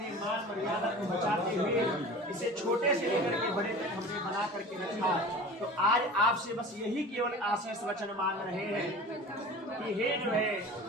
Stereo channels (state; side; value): normal; both; correlation 0.38